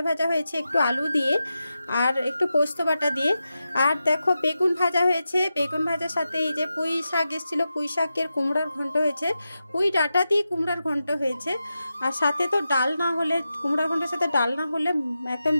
হয়েছে একটু আলু দিয়ে আর একটু পোস্ত বাটা দিয়ে। আর দেখো বেগুন ভাজা হয়েছে, বেগুন ভাজার সাথে এই যে পুঁই শাক এসেছিলো, পুঁই শাকের কুমড়ার ঘন্ট হয়েছে, পুঁই ডাঁটা দিয়ে কুমড়ার ঘন্ট হয়েছে। আর সাথে তো ডাল না হলে, কুমড়ার ঘন্টের সাথে ডাল না হলে একদম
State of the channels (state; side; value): inverted; both; correlation -0.90